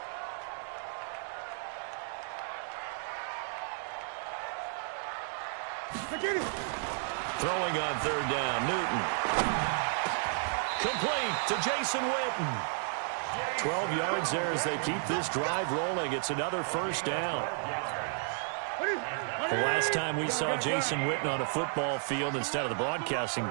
Get it. Throwing on 3rd down, Newton. Complete to Jason Witten. 12 yards there as they keep this drive rolling. It's another 1st down. The last time we saw Jason Witten on a football field instead of the broadcasting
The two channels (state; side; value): silent; left; 56 dB below the other